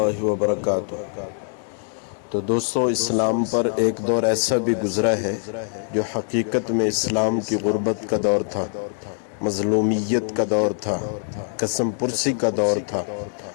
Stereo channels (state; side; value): silent; right; 63 dB below the other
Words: وبرکاتہ۔ تو دوستو، اسلام پر ایک دور ایسا بھی گزرا ہے جو حقیقت میں اسلام کی غربت کا دور تھا، مظلومیت کا دور تھا، قسم پرسی کا دور تھا۔